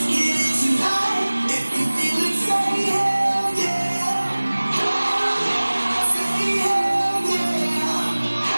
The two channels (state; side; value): inverted; both; correlation -1.00